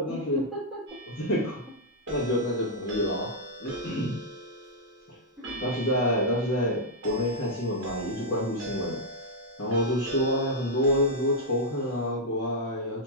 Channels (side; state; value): both; normal; correlation -0.04